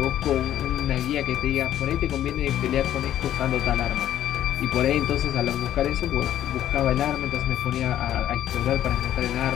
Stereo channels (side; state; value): right; quieter; 11.7 dB